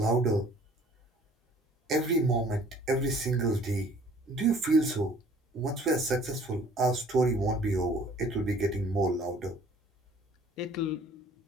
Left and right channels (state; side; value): normal; both; correlation 0.54